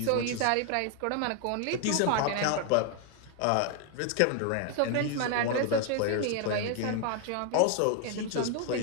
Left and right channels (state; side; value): different; both; correlation 0.01